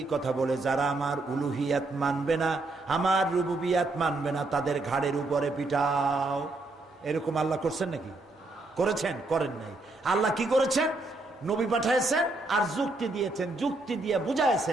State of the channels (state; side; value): quieter; left; 3.0 dB